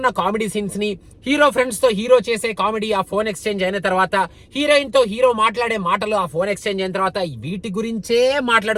కామెడీ సీన్స్ ని, హీరో ఫ్రెండ్స్ తో హీరో చేసే కామెడీ ఆ ఫోన్ ఎక్స్చేంజ్ అయిన తర్వాత, హీరోయిన్ తో హీరో మాట్లాడే మాటలు ఆ ఫోన్ ఎక్స్చేంజ్ అయిన తర్వాత, వీటి గురించే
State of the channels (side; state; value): both; identical; correlation 1.00